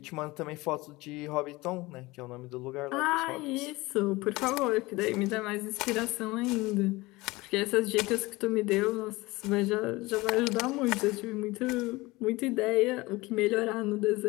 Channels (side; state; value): right; quieter; 21.4 dB